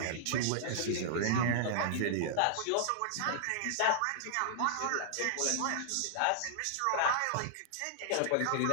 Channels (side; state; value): both; different; correlation -0.01